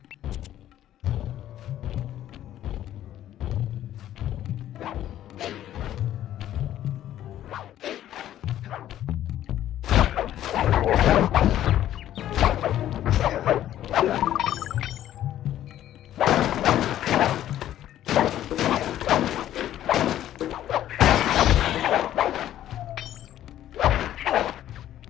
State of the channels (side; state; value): right; quieter; 12.2 dB